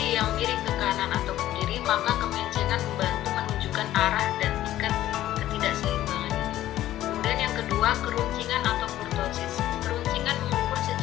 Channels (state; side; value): quieter; right; 13.7 dB